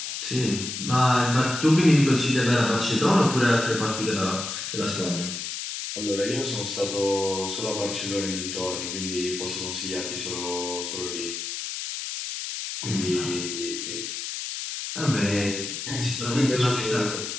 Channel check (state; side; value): noise; left; hiss, 5 dB below the sound